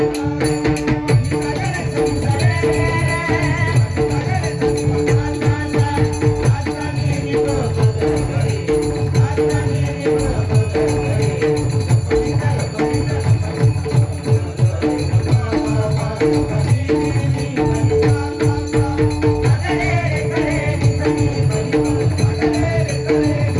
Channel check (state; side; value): identical; both; correlation 1.00